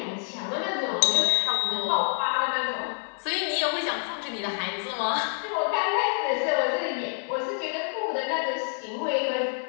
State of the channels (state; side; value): silent; right; 57 dB below the other